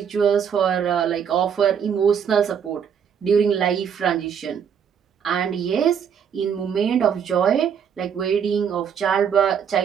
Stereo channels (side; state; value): left; quieter; 7.7 dB